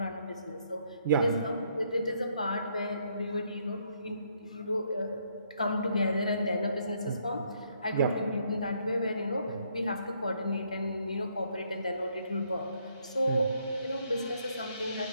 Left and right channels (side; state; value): both; inverted; correlation -0.71